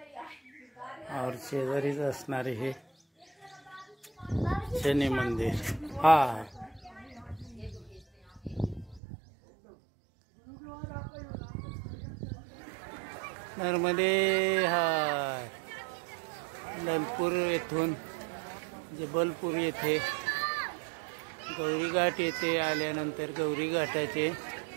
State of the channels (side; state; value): left; drops out; at 9.0 s